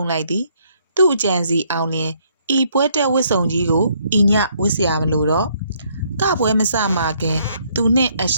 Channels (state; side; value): inverted; both; correlation -0.68